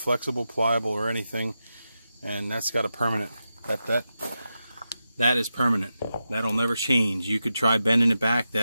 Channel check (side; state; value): both; inverted; correlation -0.90